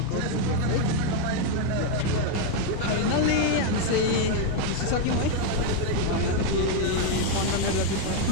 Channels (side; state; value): both; different; correlation 0.01